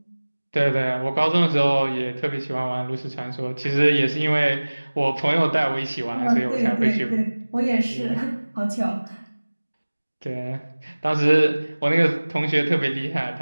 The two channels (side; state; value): both; inverted; correlation -1.00